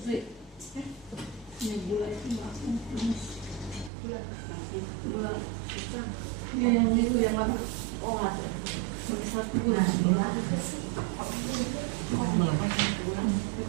Yang itu yang mana? Oh, satu. Ini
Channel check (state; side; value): drops out; left; at 3.9 s